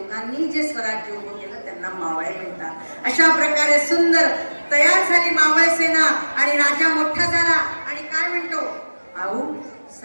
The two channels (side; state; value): both; inverted; correlation -1.00